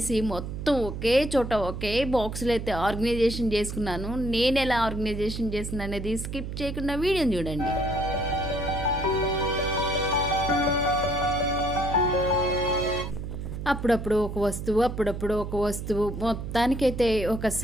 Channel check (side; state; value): right; noise; hum, 6 dB below the sound